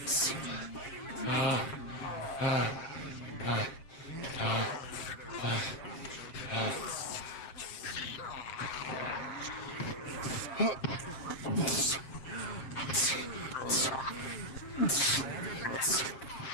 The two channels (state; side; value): late; right; 7.5 ms